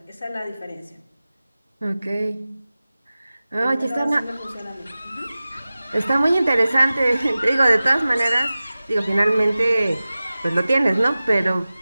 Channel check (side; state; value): both; inverted; correlation -0.97